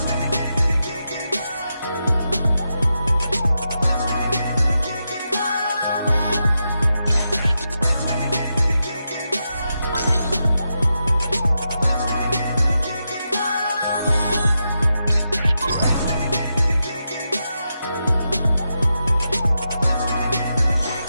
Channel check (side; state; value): both; inverted; correlation -0.87